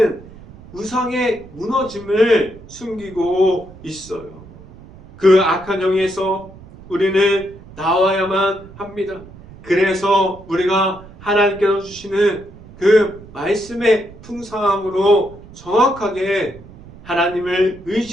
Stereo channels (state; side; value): noise; right; rumble, 20 dB below the sound